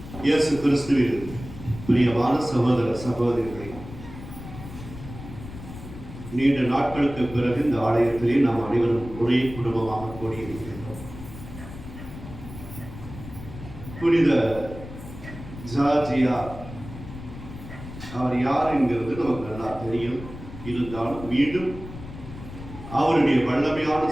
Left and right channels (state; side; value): noise; left; rumble, 13 dB below the sound